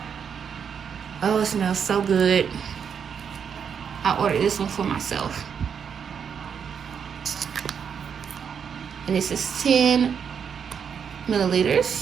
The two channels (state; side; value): quieter; left; 7.2 dB